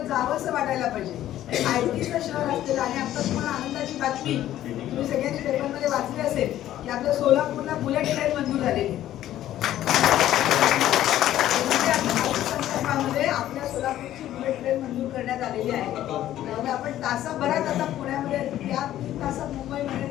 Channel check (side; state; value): right; quieter; 12.9 dB